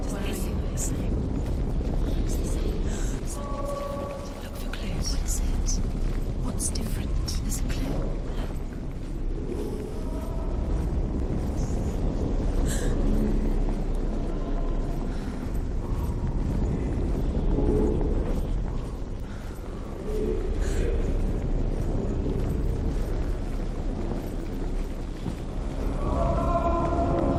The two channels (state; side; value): identical; both; correlation 1.00